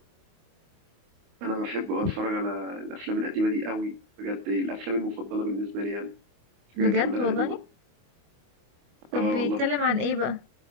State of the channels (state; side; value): late; left; 25 ms